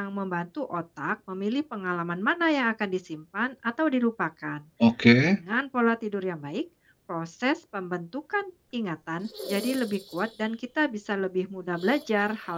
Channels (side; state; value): both; identical; correlation 1.00